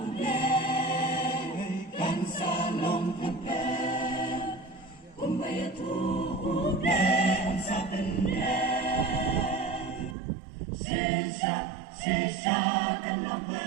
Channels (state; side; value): drops out; left; at 10.2 s